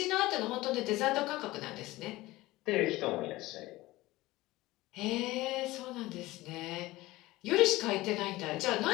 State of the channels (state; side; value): quieter; right; 18.7 dB